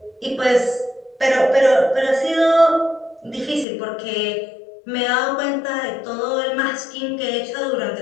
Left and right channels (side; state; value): right; drops out; at 3.7 s